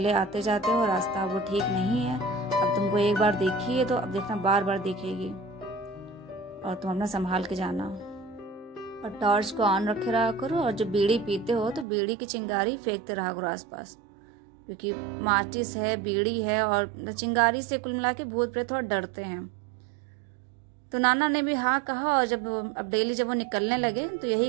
आते जाते हो, रास्ता वो ठीक नहीं है, अब तुमको एक बार देखी है तो अब देखना बार बार देखेगी, और तुम अपना संभाल के जाना, और टॉर्च को ऑन रखे रहा करो, और जब बीड़ी पीते हो तो बीड़ी की चिंगारी फेंकते रहा करो आसपास, क्योंकि माचिस है, बीड़ी है, और चिंगारी से कुल मिला के भूत प्रेत थोड़ा डरते हैं। तो नाना ने भी हाँ कहा, और जब अब डेली जब वो निकलने लगे तो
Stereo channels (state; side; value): drops out; left; at 11.9 s